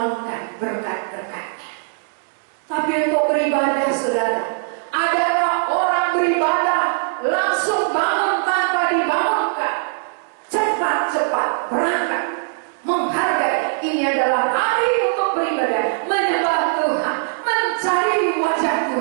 berkat-berkatnya. Tapi untuk beribadah, saudara, adakah orang beribadah langsung bangun tanpa dibangunkan? Cepat-cepat berangkat, menghargai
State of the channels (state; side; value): silent; left; digital silence